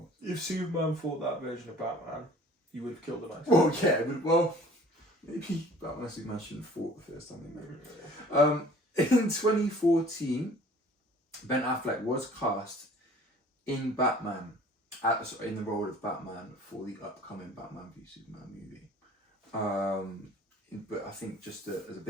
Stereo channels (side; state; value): both; normal; correlation 0.50